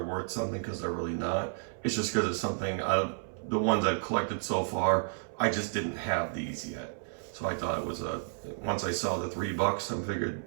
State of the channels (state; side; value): silent; left; 57 dB below the other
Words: worth something, because they're really not. It's just because it's something out of the ones I've collected so far, I just didn't have these yet. So I thought it was once I saw the $3, I figured,